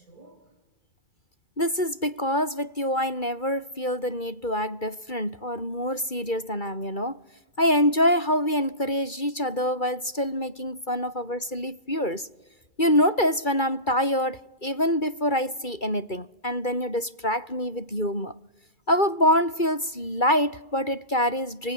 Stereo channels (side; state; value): right; late; 2.3 ms